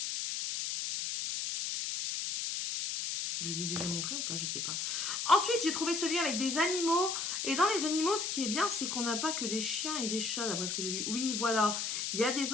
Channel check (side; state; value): left; noise; hiss, 2 dB below the sound